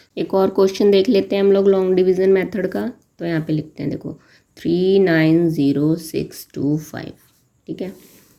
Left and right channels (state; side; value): identical; both; correlation 1.00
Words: एक और क्वेश्चन देख लेते हैं हम लोग लॉन्ग डिवीज़न मेथड का। तो यहाँ पे लिखते हैं, देखो 390625। ठीक है,